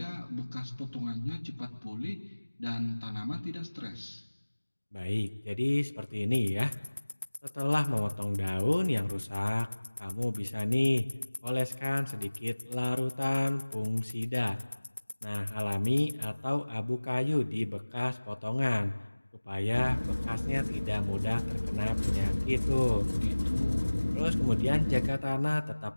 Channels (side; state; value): both; inverted; correlation -1.00